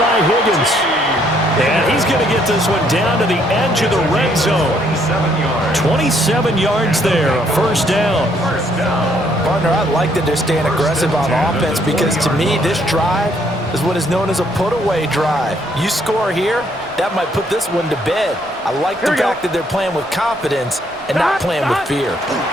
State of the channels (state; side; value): normal; both; correlation 0.68